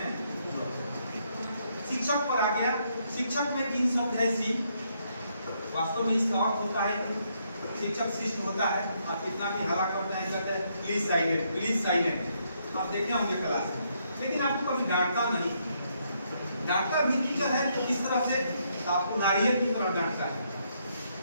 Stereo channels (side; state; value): both; inverted; correlation -0.74